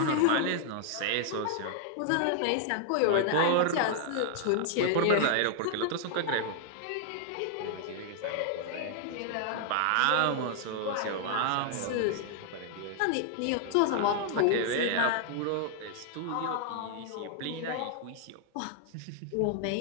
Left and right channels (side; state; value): both; different; correlation 0.00